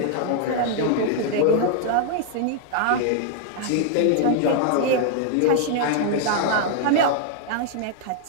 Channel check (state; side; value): different; both; correlation -0.01